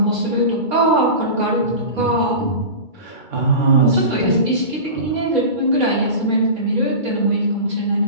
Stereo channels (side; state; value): left; late; 2.3 ms